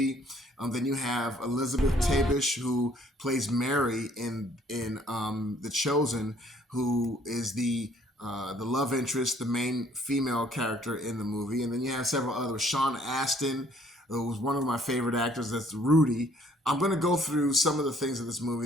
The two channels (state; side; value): normal; both; correlation 0.61